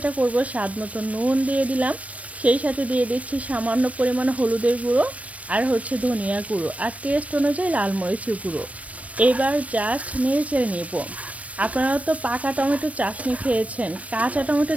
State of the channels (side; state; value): left; late; 0.066 ms